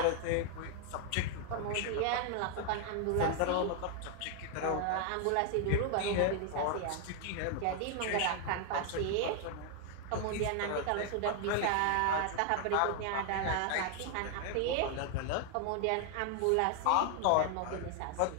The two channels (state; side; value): different; both; correlation 0.00